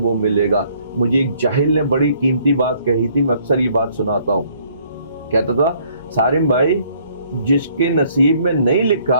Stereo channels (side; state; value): both; inverted; correlation -0.63